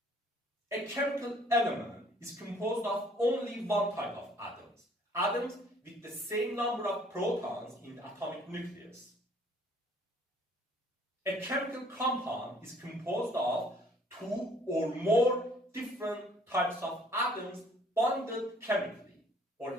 A chemical element is composed of only one type of atoms, atoms with the same number of protons in the atomic nucleus. A chemical compound is composed of two or more different types of atoms bonded chemically, or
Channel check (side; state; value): both; normal; correlation 0.59